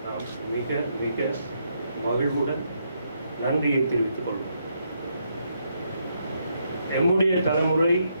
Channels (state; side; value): inverted; both; correlation -0.77